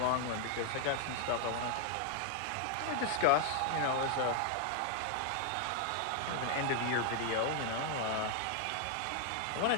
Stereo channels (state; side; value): different; both; correlation 0.00